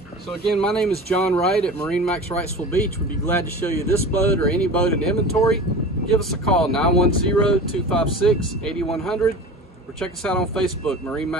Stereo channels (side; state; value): both; normal; correlation 0.35